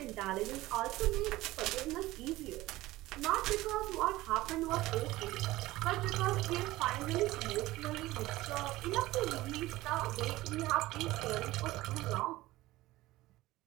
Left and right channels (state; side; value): quieter; left; 17.8 dB